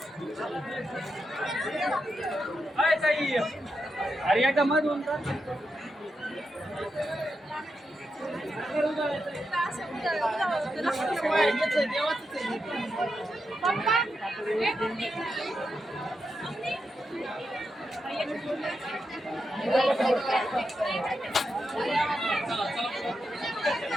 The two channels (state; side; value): normal; both; correlation 0.86